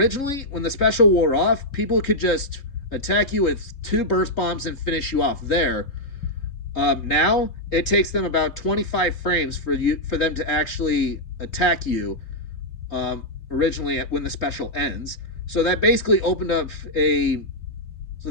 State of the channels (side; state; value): right; late; 3.7 ms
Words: when the special wore off, people could just attack you with 2 burst bombs and finish you off there. Now it takes them about 25 frames for them to actually attack you. Originally when the special ends. So that basically